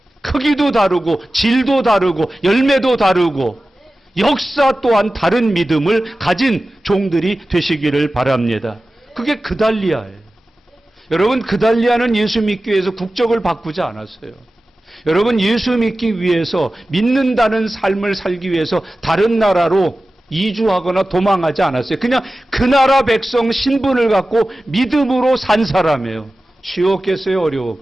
크기도 다르고 질도 다르고 열매도 다르고 역사 또한 다른 믿음을 가진 종들이 되시기를 바랍니다. 그게 그달리아예요. 여러분, 그달리아는 예수 믿기 위해서 국적을 바꾸지 않았어요. 여러분, 예수 믿기 위해서 믿는다는 삶을 살기 위해서 다른 나라로 이주하거나 도망하지 않았어요. 그냥 그 나라 백성 신분을 갖고 믿음으로 산 사람이에요. 쉬웠겠어요?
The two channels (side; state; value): both; normal; correlation 0.95